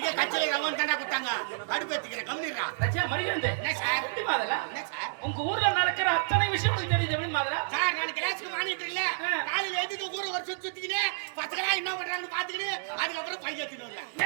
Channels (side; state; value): left; silent; digital silence